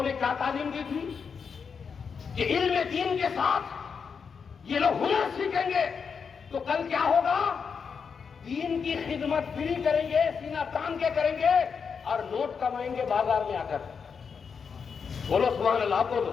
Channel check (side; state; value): right; quieter; 6.1 dB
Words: نے کیا تعلیم دی تھی کہ علم دین کے ساتھ یہ لوگ ہنر سیکھیں گے تو کل کیا ہوگا؟ دین کی خدمت فری کریں گے، سینہ تان کے کریں گے، اور نوٹ کمائیں گے بازار میں آ کر. بولو سبحان اللہ،